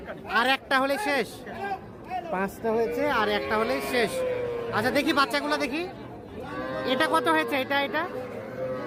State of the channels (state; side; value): identical; both; correlation 1.00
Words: আর একটা হলে শেষ। 5টা হয়েছে আর একটা হলে শেষ। আচ্ছা দেখি বাচ্চাগুলো দেখি। এটা কত হয়েছে? এটা